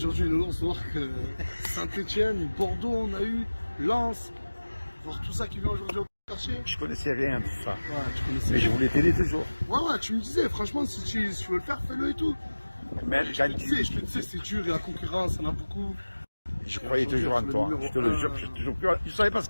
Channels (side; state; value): both; inverted; correlation -1.00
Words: Nounours, voir que Saint-Etienne, Bordeaux, on a eu, Lens, voir tout ça qui vient aujourd'hui au quartier. Je connaissais rien de ça. Ouais, tu connaissais. Mais je voulais t'aider toujours. Ouais, tu me disais, franchement, si tu veux le faire, fais-le et tout. Même Je te disais, c'est dur, il y a la concurrence, il y en a beaucoup. Je croyais toujours en toi. Je te le jure, je ne savais pas ce